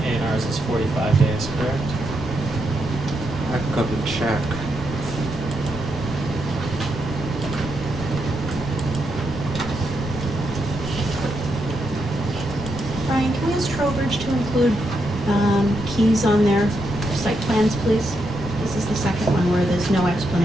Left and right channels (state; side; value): normal; both; correlation 0.81